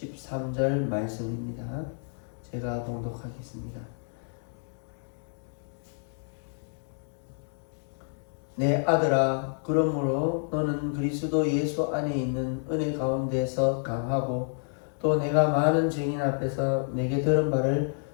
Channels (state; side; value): silent; right; 59 dB below the other